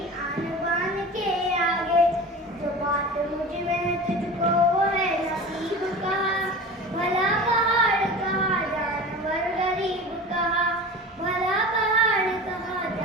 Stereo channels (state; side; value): normal; both; correlation 0.34